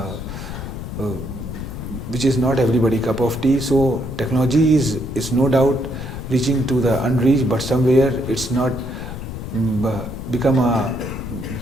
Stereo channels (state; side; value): noise; left; rumble, 8 dB below the sound